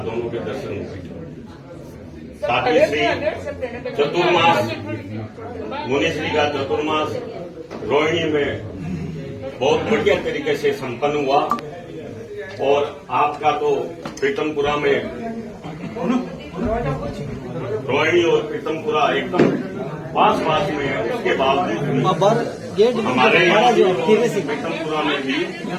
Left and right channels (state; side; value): identical; both; correlation 1.00